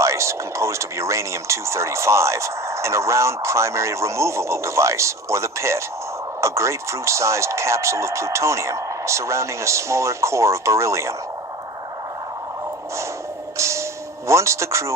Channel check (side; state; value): both; normal; correlation 0.35